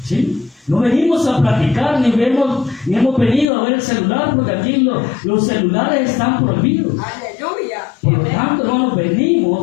¿Sí? No venimos a platicar, ni hemos venido a ver el celular, porque aquí los celulares están prohibidos. Aleluya. Por lo tanto, hermanos,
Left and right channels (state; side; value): drops out; right; at 3.5 s